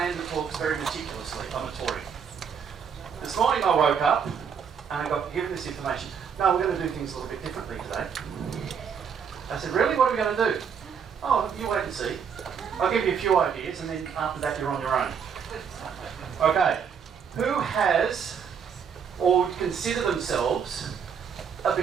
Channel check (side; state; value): left; quieter; 7.0 dB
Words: the talks very meticulously. I'm a Tory. This morning I woke up and I got given this information. No, we're going to do things a little bit differently today. I said, really? What are we going to do? Oh, you wait and see. I'll give you a few ideas and then after that you're on your own. Okay. Who has or would consider themselves a